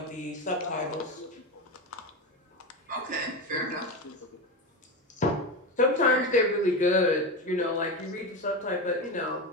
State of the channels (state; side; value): normal; both; correlation 0.19